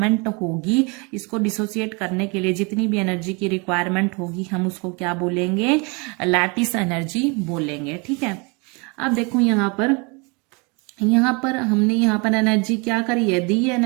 होगी, इसको डिसोसिएट करने के लिए जितनी भी एनर्जी की रिक्वायरमेंट होगी हम उसको क्या बोलेंगे, लैटिस एनर्जी बोलेंगे, ठीक है। अब देखो यहाँ पर यहाँ पर हमने यहाँ पर एनर्जी क्या करी है, दी है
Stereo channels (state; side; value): quieter; left; 30.4 dB